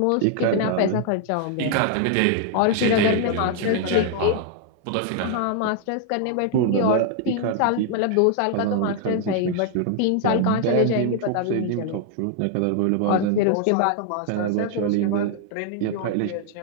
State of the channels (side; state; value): both; different; correlation 0.00